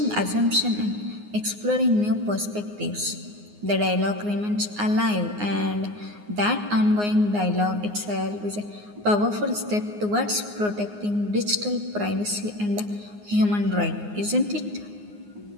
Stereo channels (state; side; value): late; left; 9.6 ms